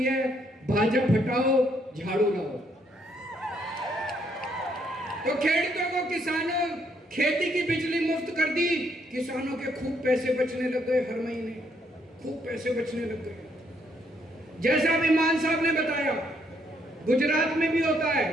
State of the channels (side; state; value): both; normal; correlation 0.71